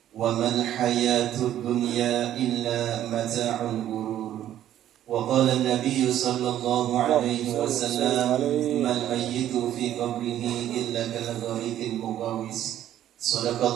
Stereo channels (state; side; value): quieter; left; 11.8 dB